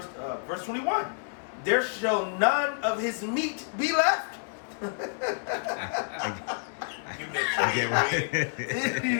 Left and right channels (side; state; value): right; silent; digital silence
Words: 21. There shall none of his meat be left. I get what. Did